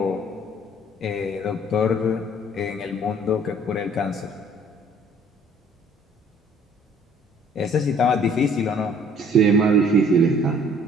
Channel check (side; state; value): both; normal; correlation 0.56